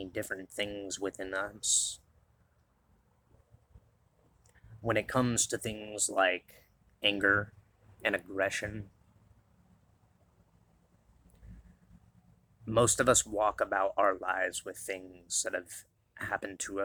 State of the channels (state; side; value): identical; both; correlation 1.00